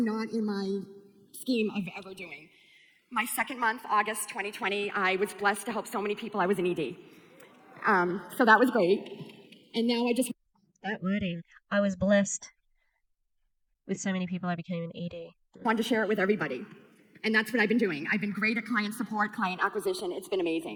in my scheme of ever doing. My second month, August 2020, I was blessed to help so many people. I was an ED. So that was great. And now That wording. I was blessed with so many people I became an ED. wanted to share it with everybody. And that's what I've been doing. I've been great at client support, client acquisition. It's been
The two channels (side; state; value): both; identical; correlation 1.00